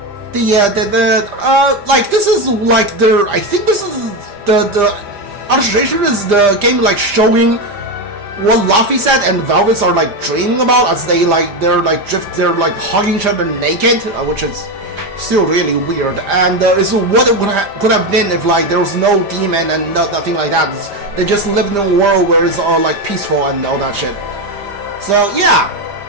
This is like I think this is the illustration is the game like showing what Luffy said and Velvets are like dreaming about as they're hugging each other naked, which is still really weird. And it's what it could have been if like there was no demon and nothing like that. They just lived in a world where it's all like peaceful and all that shit. So yeah,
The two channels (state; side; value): late; left; 5.0 ms